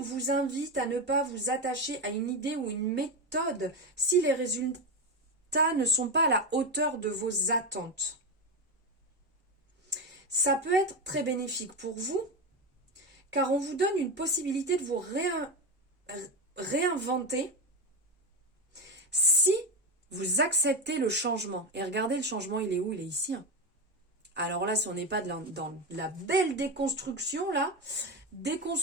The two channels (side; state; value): both; normal; correlation 0.14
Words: invite à ne pas vous attacher à une idée ou une méthode si les résultats ne sont pas à la hauteur de vos attentes. Ça peut être très bénéfique pour vous, car on vous donne une possibilité de vous réinventer si vous acceptez le changement. Et regardez, le changement, il est où? Il est ici. Hein. Alors là, si on n'est pas dans la belle déconstruction, là,